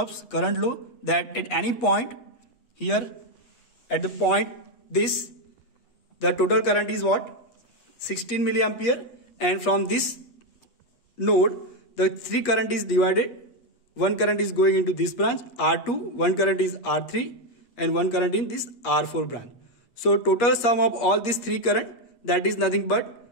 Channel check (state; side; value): late; right; 8.4 ms